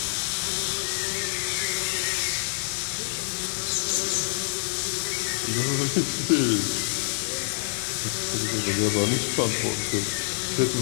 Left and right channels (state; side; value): silent; right; digital silence